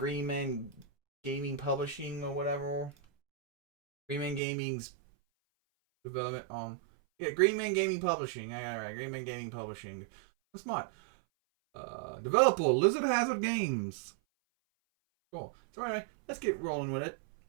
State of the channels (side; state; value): left; drops out; at 4.4 s